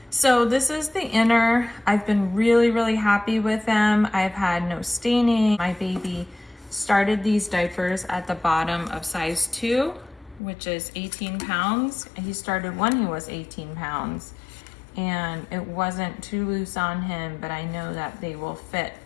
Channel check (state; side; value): drops out; right; at 10.4 s